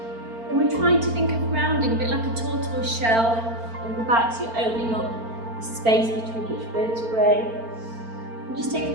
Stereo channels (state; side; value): late; left; 4.4 ms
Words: And we're trying to think of rounding, a bit like a tortoise shell on the back, so you're opening up the space between each vertebrae. And just take